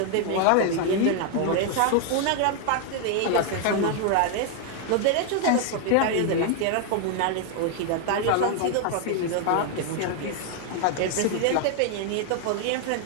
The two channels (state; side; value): different; both; correlation 0.00